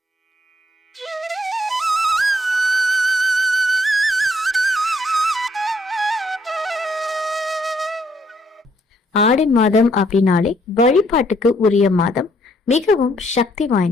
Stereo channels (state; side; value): normal; both; correlation 0.69